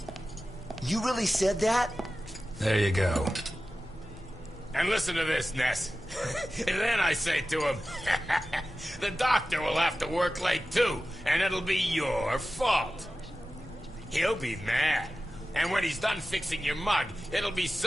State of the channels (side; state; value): both; normal; correlation 0.94